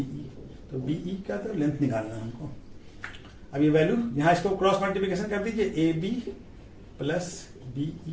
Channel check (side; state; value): both; identical; correlation 1.00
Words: तो BE का तो लेंथ निकालना है हमको। अब ये वैल्यू यहां इसको क्रॉस मल्टीप्लिकेशन कर दीजिए, AB plus BE